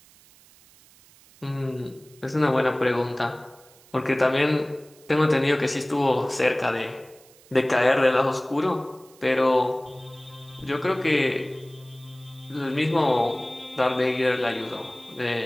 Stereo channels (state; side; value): noise; right; hiss, 27 dB below the sound